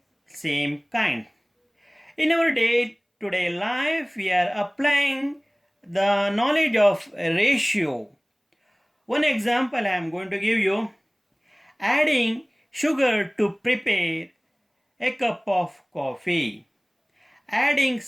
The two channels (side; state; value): both; identical; correlation 1.00